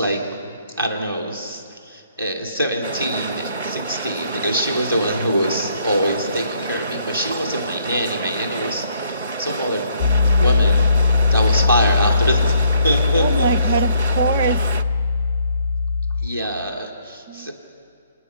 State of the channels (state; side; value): inverted; both; correlation -0.68